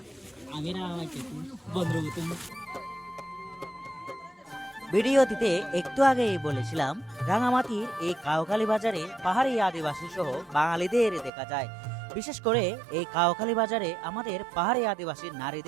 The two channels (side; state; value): left; drops out; at 11.3 s